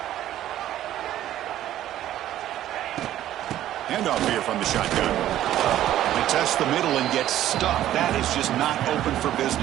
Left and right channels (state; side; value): quieter; left; 12.7 dB